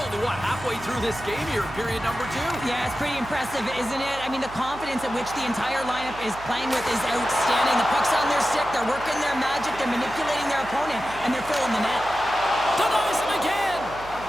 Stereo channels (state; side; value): noise; right; hum, 16 dB below the sound